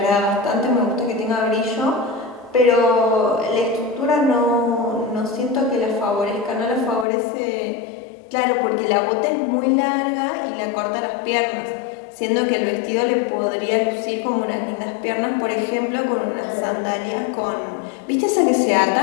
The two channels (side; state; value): right; drops out; at 7.1 s